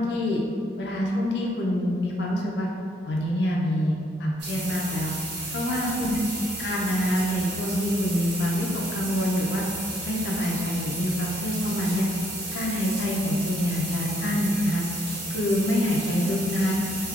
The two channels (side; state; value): both; normal; correlation 0.70